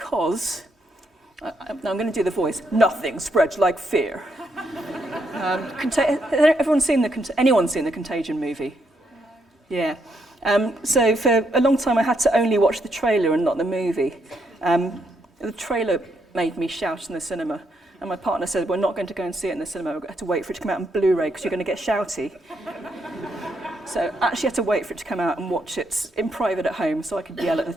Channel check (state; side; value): normal; both; correlation 0.77